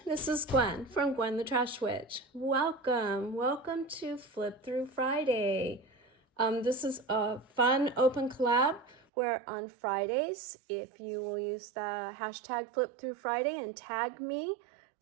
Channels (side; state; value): left; drops out; at 9.1 s